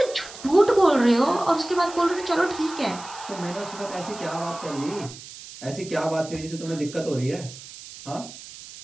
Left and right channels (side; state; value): right; noise; hiss, 15 dB below the sound